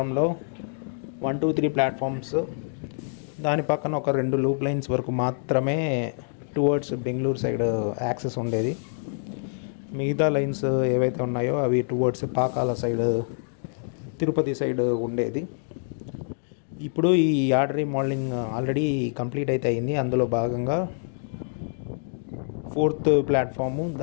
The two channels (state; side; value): silent; right; digital silence